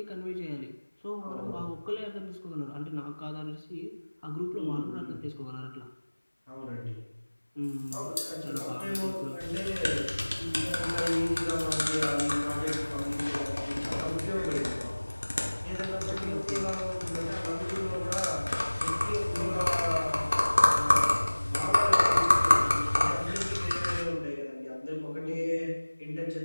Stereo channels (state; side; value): inverted; both; correlation -1.00